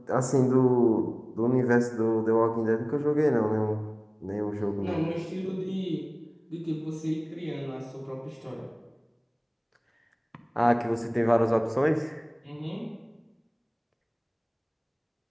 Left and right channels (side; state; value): both; identical; correlation 1.00